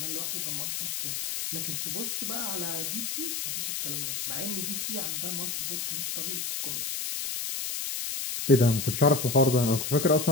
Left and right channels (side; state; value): left; noise; hiss, 3 dB below the sound